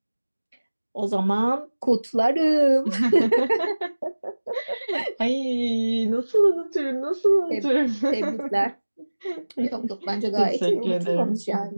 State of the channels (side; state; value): both; inverted; correlation -1.00